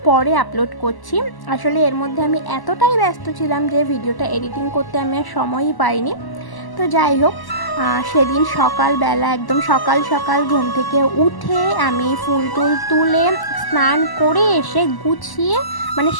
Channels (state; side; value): late; right; 1.0 ms